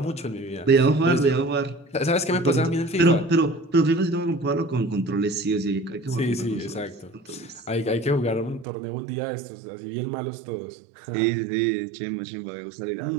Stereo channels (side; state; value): left; drops out; at 8.7 s